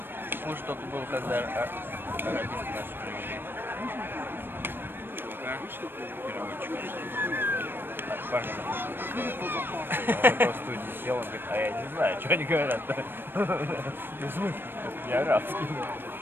хуже только был, когда арабисты наши привели. Чувака, переводчика. Парня. Он просто в студии сел, он говорит, а я не знаю, что они говорят-то. Ну, в смысле? Не арабский.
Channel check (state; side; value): late; left; 0.099 ms